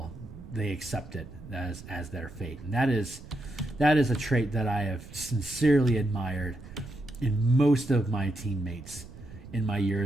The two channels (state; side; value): noise; right; rumble, 16 dB below the sound